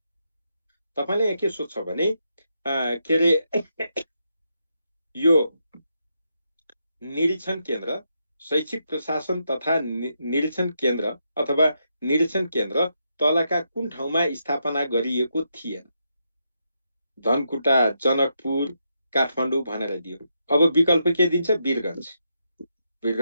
तपाईले यहाँ के सोध्छ भने के रे यो निरीक्षण केन्द्र शैक्षिक प्रशासन तथा निरीक्षण केन्द्र अथवा निरीक्षण केन्द्र तलका कुन ठाउँमा स्थापना गरिएको थिएन धनकुटा जनकपुर काठमाडौँ भनेर दियो अब विकल्प के दिन्छ वीरगञ्ज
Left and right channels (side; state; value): both; inverted; correlation -0.82